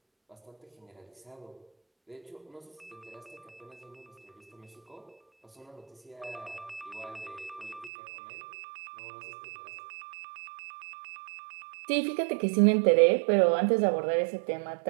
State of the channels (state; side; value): drops out; left; at 7.9 s